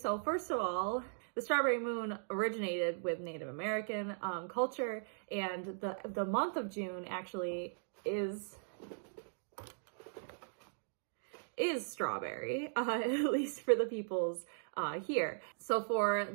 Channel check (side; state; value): left; silent; digital silence